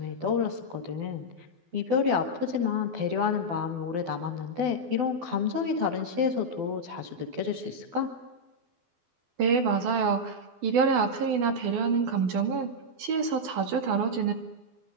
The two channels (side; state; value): left; late; 12 ms